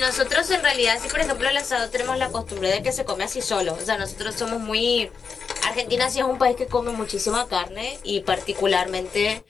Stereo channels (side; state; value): right; quieter; 5.6 dB